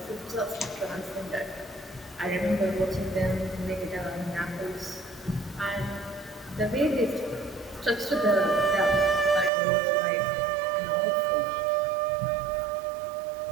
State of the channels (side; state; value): left; drops out; at 9.5 s